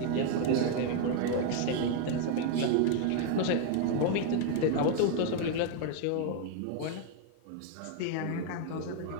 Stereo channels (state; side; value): different; both; correlation 0.00